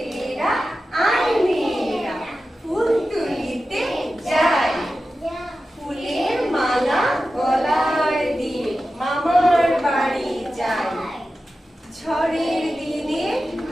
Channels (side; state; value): both; normal; correlation 0.93